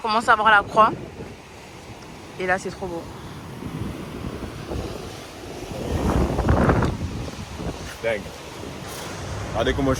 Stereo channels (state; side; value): identical; both; correlation 1.00